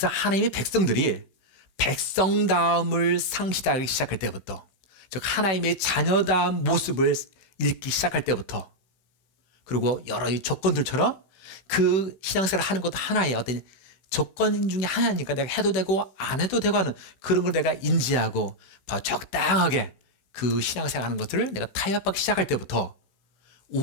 하나님의 백성들이 백성다움을 상실하기 시작할 때부터, 즉 하나님의 자녀다운 모습을 잃기 시작할 때부터, 그리고 여러 조건들처럼 그 신앙생활을 하는 것도 하나의 어떤 조건 중에 하나니까 내가 해도 되고 안 해도 되고 하는 그런 걸 내가 인지하고 바로 적당하게 그 신앙생활 하는 것들을 내가 타협하기 시작할 때부터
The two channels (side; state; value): right; late; 16 ms